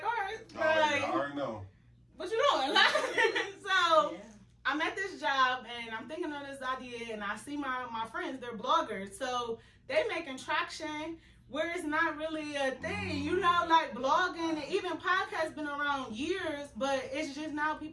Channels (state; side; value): identical; both; correlation 1.00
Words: all right, like, I already know. What you doing? Like, so I'm at this job and I'm thinking of this idea, and I see my friends, they're bloggers. So they making traction where it's not really a thing, you know, like blogging and even podcasts been around years, but it's just now